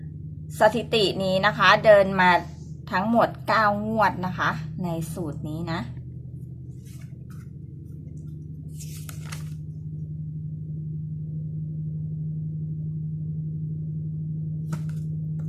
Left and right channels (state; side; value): identical; both; correlation 1.00